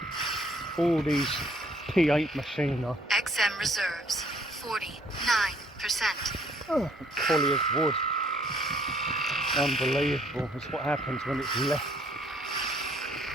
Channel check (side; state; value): both; normal; correlation 0.63